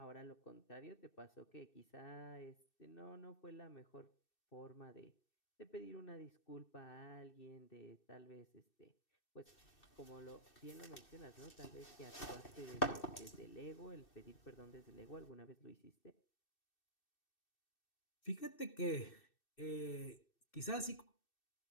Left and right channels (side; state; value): right; late; 2.6 ms